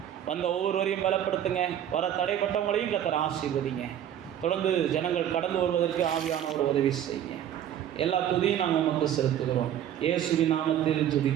வந்த ஒவ்வொருவரையும் பலப்படுத்துங்க, வர தடைப்பட்டவங்களையும் கர்த்தர் ஆசீர்வதிங்க. தொடர்ந்து ஜனங்கள் கடந்து வருவதற்கு ஆவியான ஒரு உதவி செய்யுங்க. எல்லா துதியும் நாங்கள் உமக்கு செலுத்துகிறோம். இயேசுவின் நாமத்தில்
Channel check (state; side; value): quieter; left; 10.5 dB